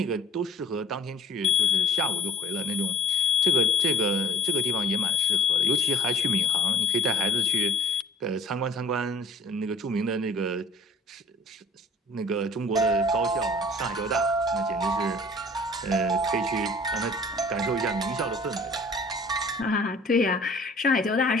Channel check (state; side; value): normal; both; correlation 0.50